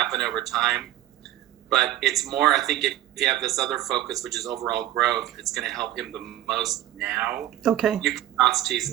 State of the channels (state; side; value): quieter; left; 13.7 dB